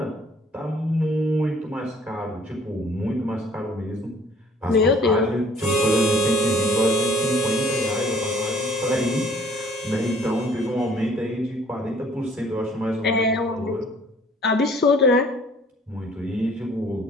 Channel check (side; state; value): both; normal; correlation 0.56